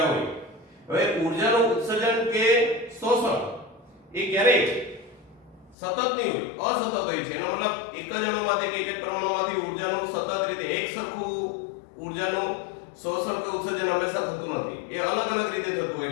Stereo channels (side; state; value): right; drops out; at 5.8 s